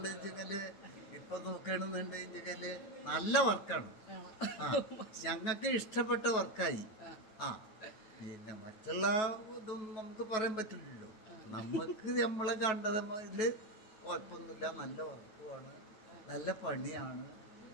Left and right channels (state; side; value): late; right; 9.3 ms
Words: ഇപ്പൊ നോക്കണെന്നുണ്ടെങ്കില് നല്ല വർക്കാണ്. ഞങ്ങൾക്ക് ഇഷ്ടപ്പെട്ട വർക്കായി. പിന്നെ മറ്റുള്ള ഇതൊന്നും നമുക്ക് പറയാൻ പറ്റില്ലല്ലോ. നമുക്ക് നമ്മളെ കണ്ടതില് കുഴപ്പമൊന്നുമില്ല. നല്ല വർക്കുമാണ്, നല്ല പണിയാണ്,